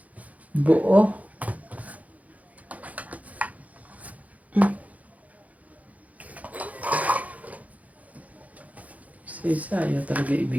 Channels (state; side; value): late; left; 0.072 ms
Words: Buo. Si isa ayaw talaga